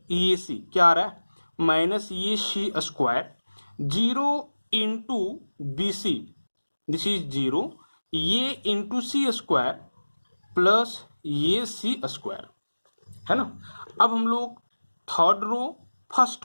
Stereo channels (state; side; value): inverted; both; correlation -1.00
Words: A C क्या आ रहा है minus A C square, 0 into B C this is 0, A into C square plus A C square, है ना। अब हम लोग third row first